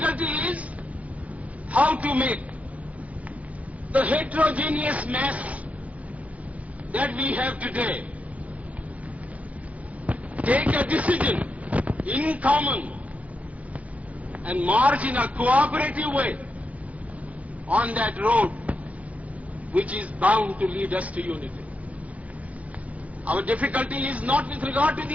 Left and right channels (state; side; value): late; left; 0.067 ms